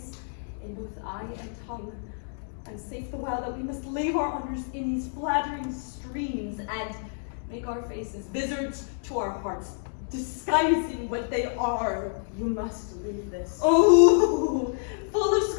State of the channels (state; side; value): silent; right; 59 dB below the other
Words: in both eye and tongue, and safe the while that we must lave our honors in these flattering streams, and make our faces vizards to our hearts, disguising what they are. You must leave this. Oh, full of